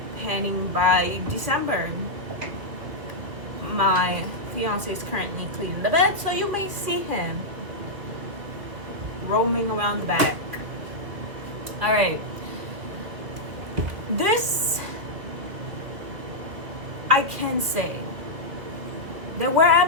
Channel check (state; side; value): late; left; 2.7 ms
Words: Panning by December. My fiance is currently cleaning the bed, so you may see him roaming around the back. All right, this I can say there were